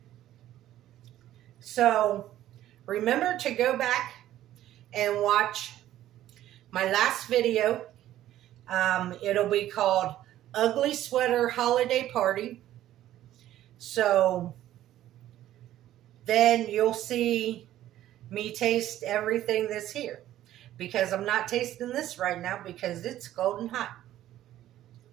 So remember to go back and watch my last video. It'll be called Ugly Sweater Holiday Party. So then you'll see me taste everything that's here, because I'm not tasting this right now because it's golden hot.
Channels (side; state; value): left; quieter; 13.1 dB